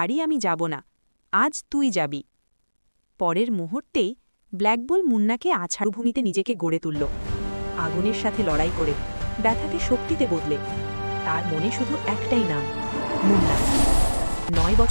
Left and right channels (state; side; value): inverted; both; correlation -1.00